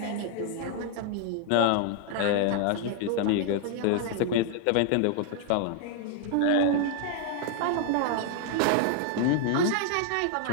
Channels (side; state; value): both; different; correlation 0.00